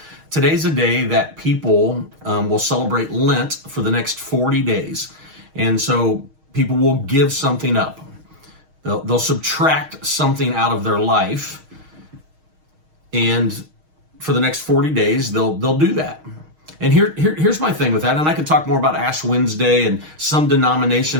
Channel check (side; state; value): left; late; 6.4 ms